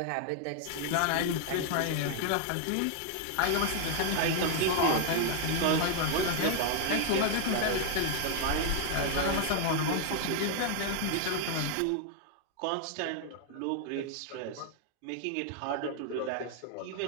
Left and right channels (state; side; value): different; both; correlation 0.00